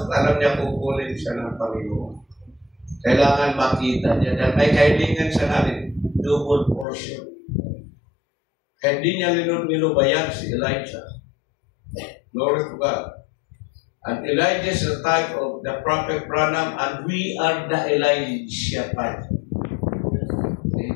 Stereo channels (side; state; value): right; drops out; at 6.9 s